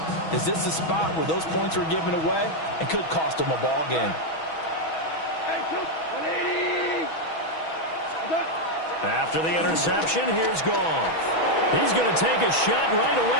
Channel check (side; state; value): right; late; 6.2 ms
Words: Is this the spot where those points were given away and could cost them a ball game? After the interception, here's Goff. He's going to take a shot right